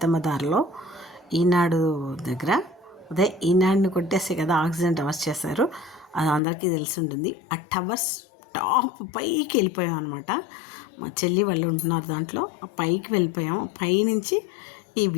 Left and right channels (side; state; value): right; drops out; at 6.4 s